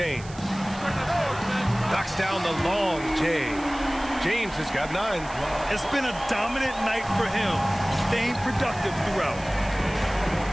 Knocks down the long J. James has got 9. It's been a dominant night for him, staying productive throughout.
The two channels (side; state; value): right; noise; hiss, 19 dB below the sound